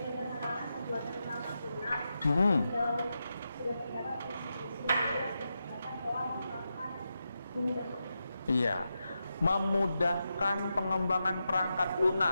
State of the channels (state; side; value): inverted; both; correlation -0.88